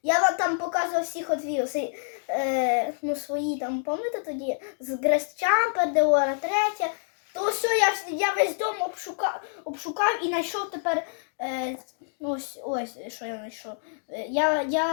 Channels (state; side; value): silent; right; digital silence